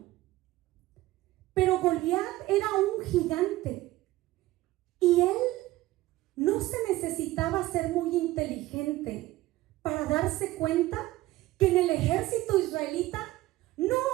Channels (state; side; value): quieter; left; 17.2 dB